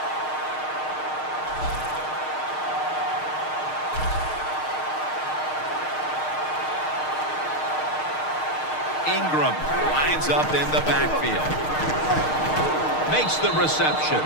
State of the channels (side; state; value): right; late; 6.5 ms